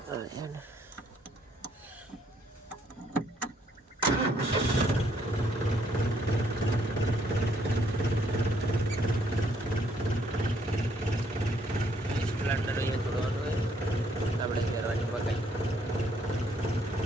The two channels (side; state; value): both; normal; correlation 0.68